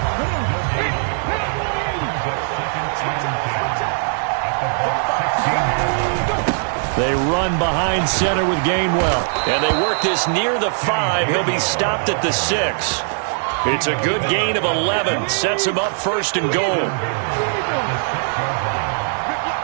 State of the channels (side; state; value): left; silent; digital silence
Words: They run behind center with Gainwell. And they work this near the 5. He'll be stopped at the 6. It's a good gain of 11. Sets him up 1st and goal.